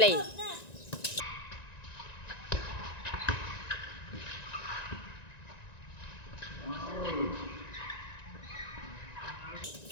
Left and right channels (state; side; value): late; right; 1.9 ms